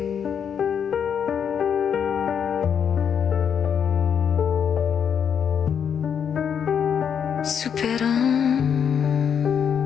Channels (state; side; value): quieter; right; 7.7 dB